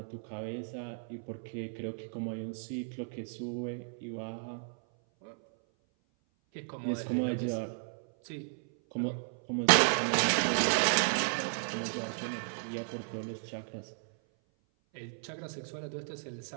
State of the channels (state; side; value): silent; left; 55 dB below the other